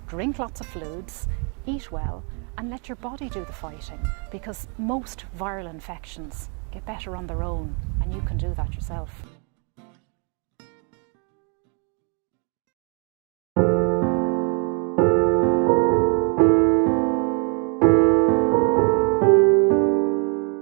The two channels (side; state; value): left; quieter; 38.5 dB